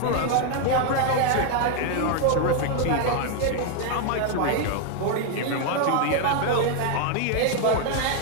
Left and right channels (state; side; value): different; both; correlation 0.01